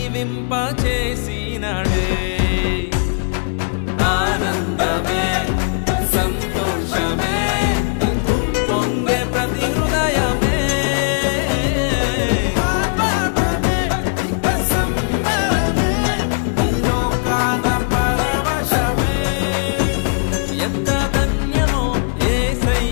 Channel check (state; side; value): silent; right; 67 dB below the other